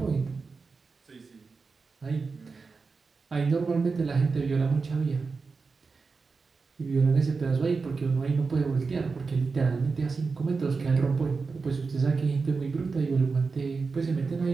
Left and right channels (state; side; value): quieter; left; 4.5 dB